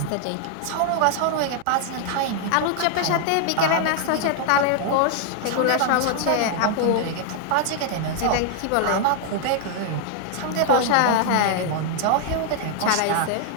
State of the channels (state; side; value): different; both; correlation 0.00